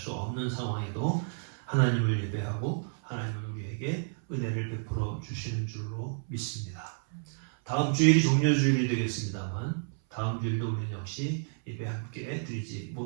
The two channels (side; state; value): left; silent; 57 dB below the other